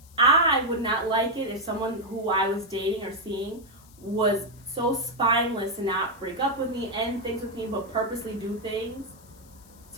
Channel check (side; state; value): left; noise; hiss, 25 dB below the sound